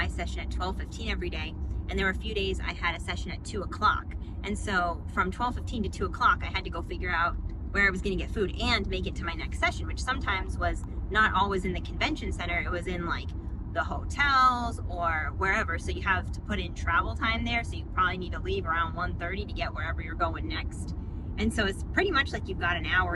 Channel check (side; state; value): both; identical; correlation 1.00